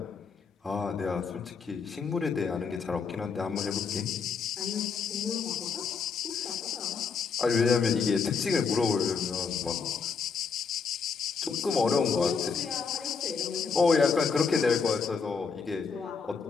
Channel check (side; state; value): right; quieter; 5.5 dB